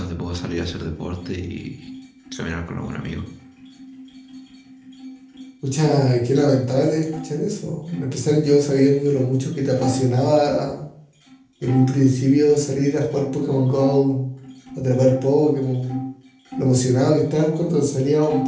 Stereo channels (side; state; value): both; identical; correlation 1.00